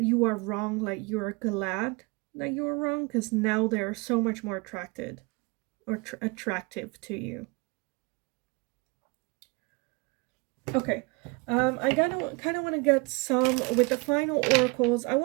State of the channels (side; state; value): left; quieter; 28.2 dB